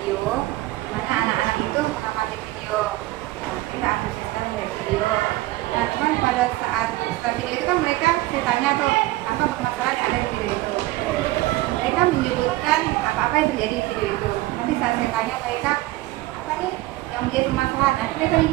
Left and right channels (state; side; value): quieter; left; 18.3 dB